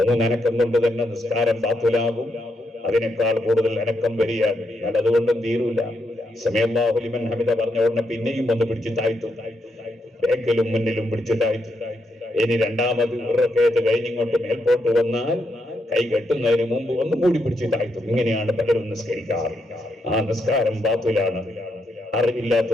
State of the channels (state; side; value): normal; both; correlation 0.80